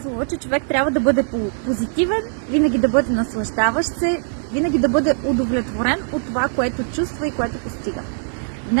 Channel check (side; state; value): left; silent; 65 dB below the other